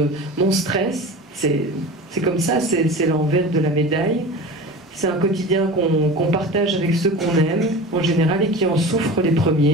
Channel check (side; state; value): both; normal; correlation 0.34